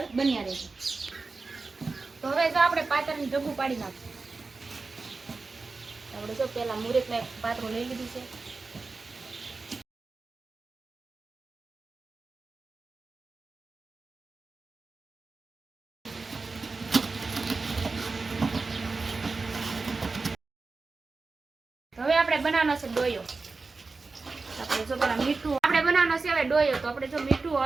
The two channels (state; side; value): quieter; left; 4.0 dB